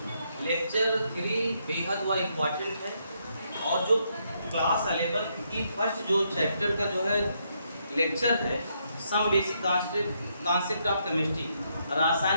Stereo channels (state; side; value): inverted; both; correlation -0.76